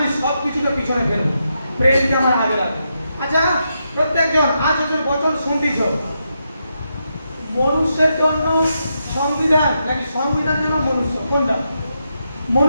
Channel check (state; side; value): inverted; both; correlation -0.83